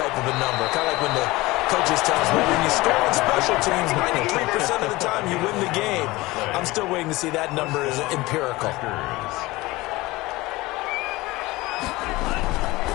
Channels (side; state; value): right; quieter; 20.5 dB